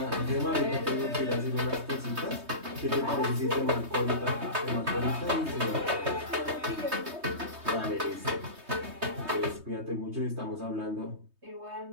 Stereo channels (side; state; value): left; late; 3.2 ms